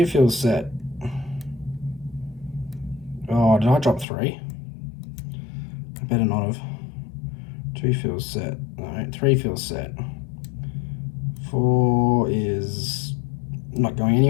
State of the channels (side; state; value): right; drops out; at 4.0 s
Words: feels set. Oh, did I drop 3? I better not have. 2 feels set. No, 3 feels set. 4 is not going